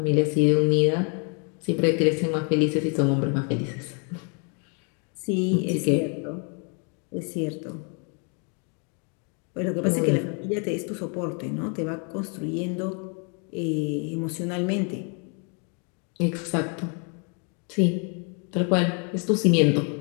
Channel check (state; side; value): quieter; right; 37.7 dB